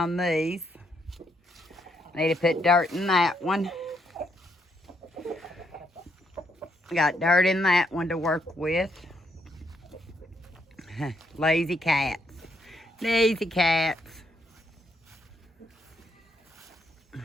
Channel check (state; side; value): normal; both; correlation 0.75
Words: these. Need to put dirt in that one. Got dirt in that one to work with. Lazy cats. Lazy cats.